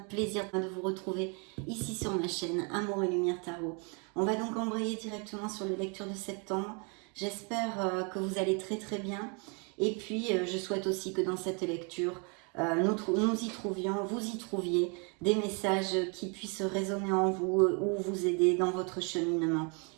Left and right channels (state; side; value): quieter; left; 35.2 dB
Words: plaisir de vous retrouver ici sur ma chaîne Amour et Lumière Tarot. On va donc embrayer directement sur les lectures de septembre. J'espère que vous allez très bien. Et puis je souhaite aussi que dans cette lecture nous y trouvions, vous y trouviez des messages qui puissent résonner en vous ou vous aider dans votre cheminement.